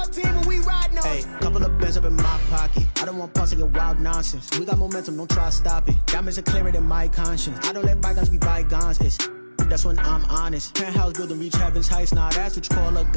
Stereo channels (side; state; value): both; inverted; correlation -1.00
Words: team and we riding on him. Hey, couple of bands up in my pocket. I don't want pause to get wild nonsense. We got momentum, don't try to stop it. Diamonds are clearer than my conscience. I don't let bygones be bygones. It's that's when I'm honest. Penthouse building, reach heaven's heights. Nah, that's what you call a